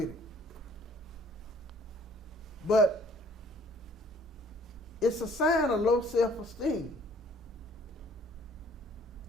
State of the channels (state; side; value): normal; both; correlation 0.58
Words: it. But it's a sign of low self-esteem.